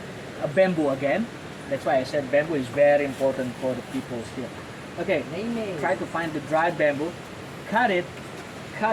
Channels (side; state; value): both; identical; correlation 1.00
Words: A bamboo again. That's why I said bamboo is very important for the people here. Okay, try to find the dry bamboo, cut it,